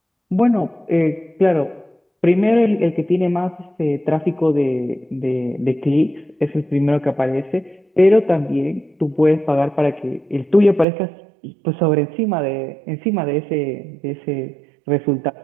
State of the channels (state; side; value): drops out; left; at 10.9 s